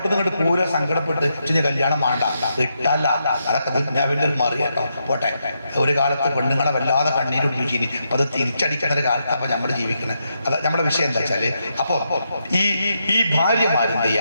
നിന്ന് ഇങ്ങോട്ട് പൂര സങ്കടപ്പെട്ട് കല്യാണം വേണ്ട ഇട്ടല്ല. അതൊക്കെ ദുന്യാവിന്റെ ഒരു മറി കേട്ടോ. പോട്ടെ, ഒരു കാലത്ത് പെണ്ണുങ്ങളെ വല്ലാതെ കണ്ണീരൊടിപ്പിച്ചിനി. അപ്പൊ അത് തിരിച്ചടിക്കുന്ന ഒരു കാലത്ത് അപ്പൊ നമ്മൾ ജീവിക്കുന്നത്. അത് നമ്മുടെ വിഷയം എന്താ വെച്ചാല്, അപ്പൊ ഈ ഭാര്യമാരെന്ത്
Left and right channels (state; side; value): inverted; both; correlation -0.82